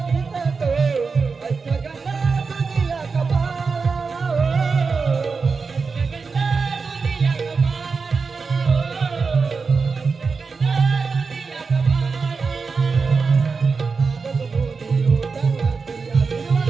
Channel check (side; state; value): left; quieter; 4.8 dB